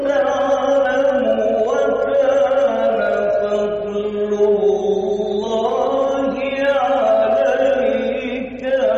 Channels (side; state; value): both; identical; correlation 1.00